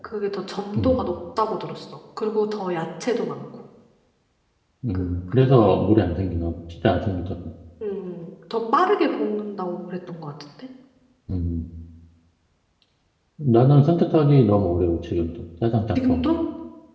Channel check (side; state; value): both; identical; correlation 1.00